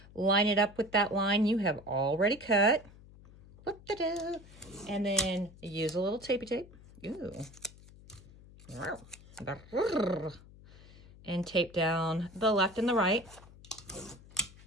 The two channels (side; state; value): left; noise; hum, 21 dB below the sound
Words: Line it up with that line you have already cut. And then use a little tapey tape. Ooh. And tape down the left and the right.